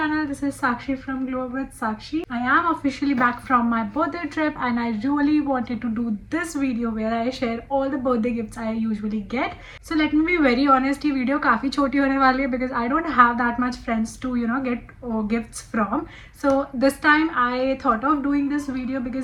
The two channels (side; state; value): both; identical; correlation 1.00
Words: This is Sakshi from Glow with Sakshi. I am officially back from my birthday trip and I really wanted to do this video where I share all the birthday gifts I usually get. So let me be very honest, this video काफी छोटी होने वाली है because I don't have that much friends to get gifts from. So this time I thought of doing this video